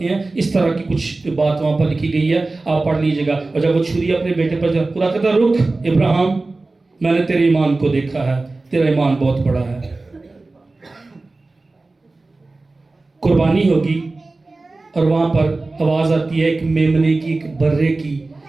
ہیں۔ اس طرح کی کچھ بات وہاں پر لکھی گئی ہے، آپ پڑھ لیجئے گا۔ اور جب وہ چھری اپنے بیٹے پر جب، خدا کہتا رک ابراہیم، میں نے تیرے ایمان کو دیکھا ہے، تیرا ایمان بہت بڑا ہے۔ قربانی ہوگی، اور وہاں پر آواز آتی ہے ایک میمنے کی، ایک برے کی،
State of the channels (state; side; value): quieter; left; 3.3 dB